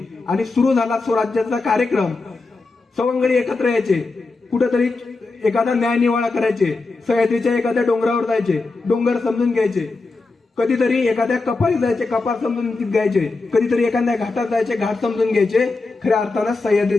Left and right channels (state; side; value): quieter; right; 3.7 dB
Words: आणि सुरू झाला स्वराज्याचा कार्यक्रम. सवंगडी एकत्र यायचे, कुठेतरी एखादा न्याय निवाडा करायचे, सह्याद्रीच्या एखाद्या डोंगरावर जायचे, डोंगर समजून घ्यायचे, कधीतरी एखाद्या कपारी जायचे, कपार समजून घ्यायचे, कधीतरी एखाद्या घाटात जायचे, घाट समजून घ्यायचे. खऱ्या अर्थानं